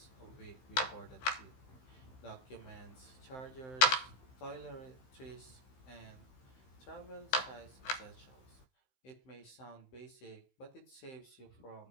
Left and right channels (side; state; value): right; late; 15 ms